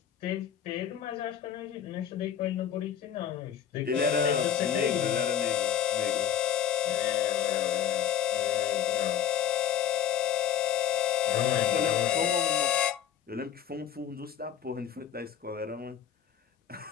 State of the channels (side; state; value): right; quieter; 9.6 dB